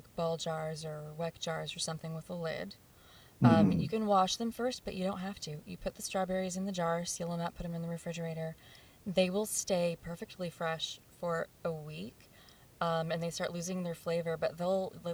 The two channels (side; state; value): both; identical; correlation 1.00